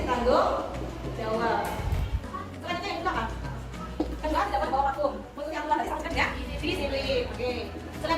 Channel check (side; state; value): both; identical; correlation 1.00